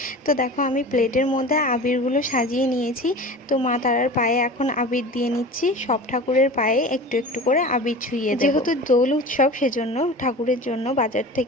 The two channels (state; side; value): normal; both; correlation 0.35